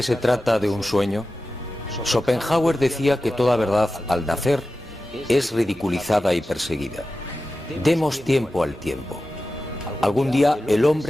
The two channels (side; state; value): both; normal; correlation 0.93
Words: se trata de un sueño? Schopenhauer decía que toda verdad, al nacer, es ridiculizada y perseguida. Demos tiempo al tiempo. Algún día el